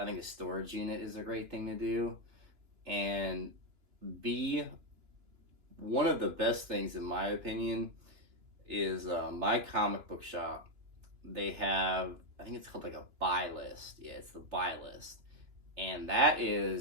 think a storage unit is a great thing to do. And B, one of the best things, in my opinion, is my comic book shop. They have, I think it's called like a buy list. Yeah, it's the buy list. And that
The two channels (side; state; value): left; late; 2.9 ms